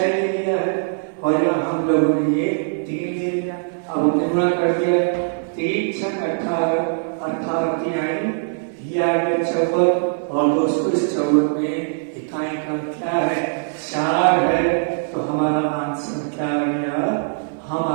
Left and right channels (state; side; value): silent; left; digital silence